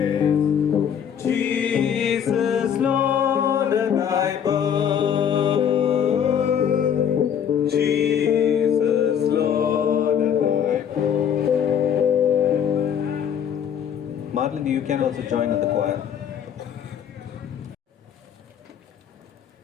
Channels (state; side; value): quieter; right; 8.5 dB